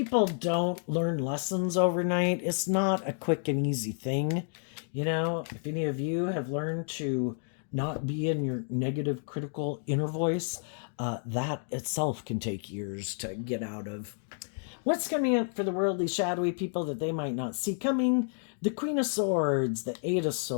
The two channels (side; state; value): right; silent; 58 dB below the other